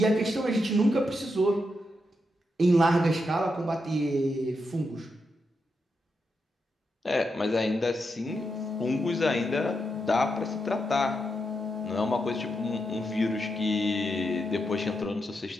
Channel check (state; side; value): normal; both; correlation 0.84